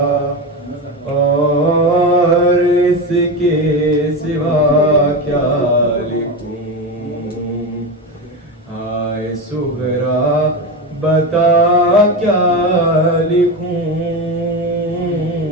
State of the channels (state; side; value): normal; both; correlation 0.19